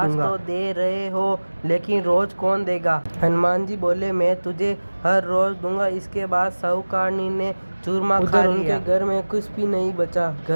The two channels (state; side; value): inverted; both; correlation -1.00